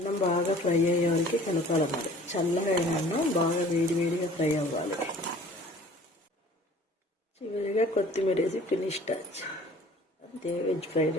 బాగా ఫ్రై అయ్యే వరకు కలపాలి. మరి చల్లగా అయిన అన్నం బాగా వేడిగా ఫ్రై అవ్వాలి. చివరిగా కొత్తిమీర వేసి ఫినిష్ టచ్. అంతే, వెజ్ ఫ్రైడ్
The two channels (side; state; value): both; normal; correlation 0.50